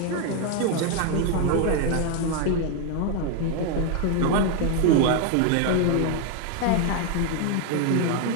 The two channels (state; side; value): different; both; correlation 0.01